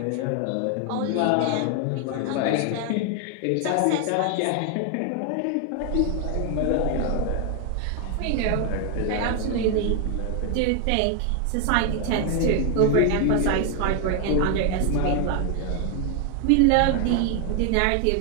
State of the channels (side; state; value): both; different; correlation 0.00